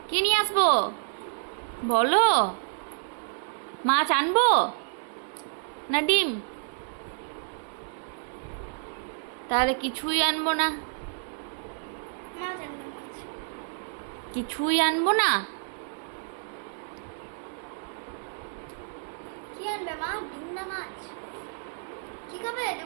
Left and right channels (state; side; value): silent; left; digital silence